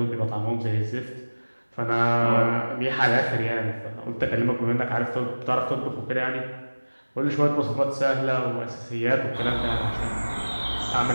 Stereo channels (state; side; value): inverted; both; correlation -1.00